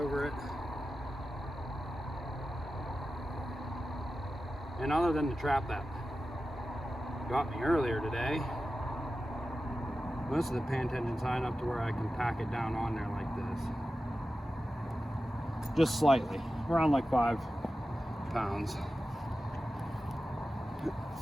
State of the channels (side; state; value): both; normal; correlation 0.93